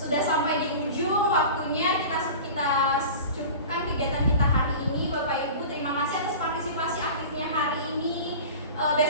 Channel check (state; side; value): inverted; both; correlation -0.35